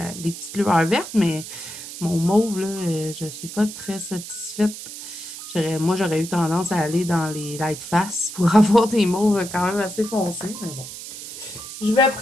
petites lueurs vertes, mais mon mauve, là, je suis pas très satisfaite. Moi, j'aurais eu tendance à aller dans les light face pour avoir des mauves quand même assez foncés, mais bon. Je vais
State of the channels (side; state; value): right; noise; hiss, 11 dB below the sound